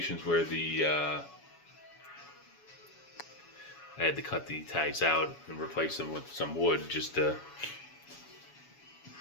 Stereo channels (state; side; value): late; right; 7.1 ms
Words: where I had to cut the ties out and replace them with some wood just to